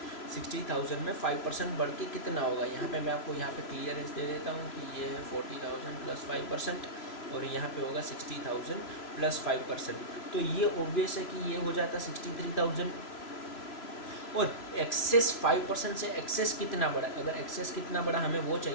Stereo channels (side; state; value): right; late; 3.0 ms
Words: 60,000 में 5% बढ़ के कितना होगा। यहाँ पे मैं आपको यहाँ पे क्लियरेंस दे देता हूँ कि ये है 40,000 प्लस 5%, और यहाँ पे होगा 60,000 प्लस 5%, तो ये ऑब्वियस है कि ये हो जाता 63,000। और एक्सेस 5% से एक्सेस कितना बड़ा, अगर एक्सेस कितना बड़ा हमें वो